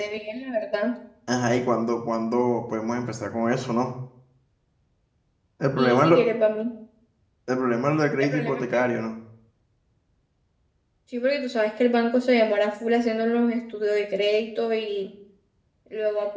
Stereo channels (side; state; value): both; identical; correlation 1.00